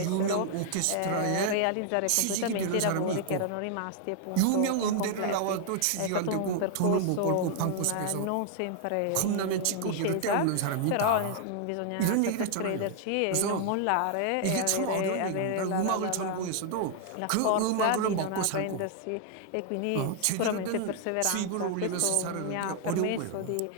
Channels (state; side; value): different; both; correlation 0.00